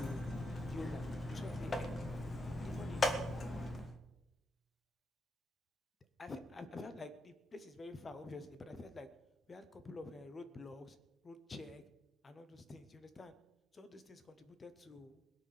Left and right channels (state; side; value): normal; both; correlation 0.84